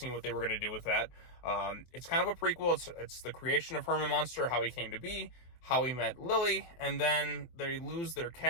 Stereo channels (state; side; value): late; right; 23 ms